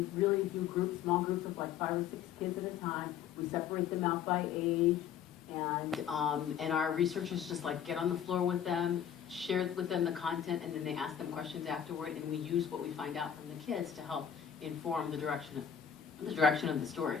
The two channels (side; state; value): right; quieter; 8.8 dB